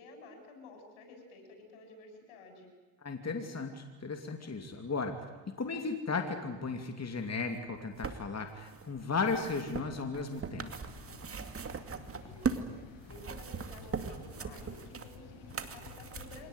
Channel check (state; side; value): normal; both; correlation 0.14